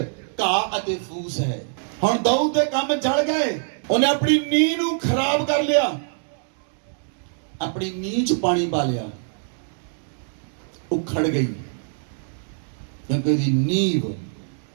अते फूस है। हुण दाऊद दे काम जल गए, उन्हें अपनी नींव नूं खराब कर लिया, अपनी नींव च पानी पा लिया, उखड़ गई, क्योंकि उसकी नींव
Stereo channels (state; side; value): silent; left; digital silence